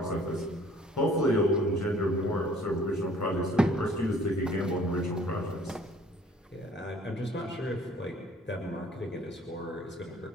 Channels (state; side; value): normal; both; correlation 0.56